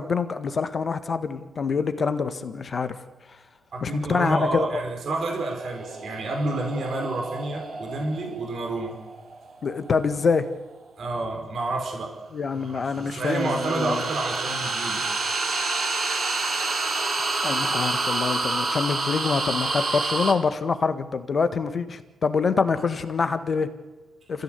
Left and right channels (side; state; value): both; normal; correlation 0.81